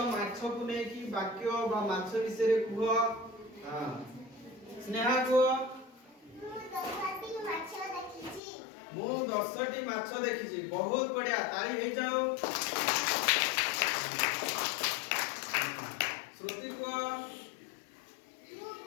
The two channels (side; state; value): right; drops out; at 8.4 s